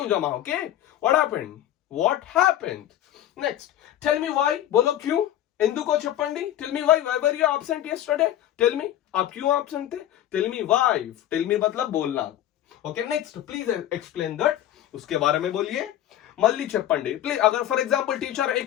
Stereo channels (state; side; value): quieter; right; 12.3 dB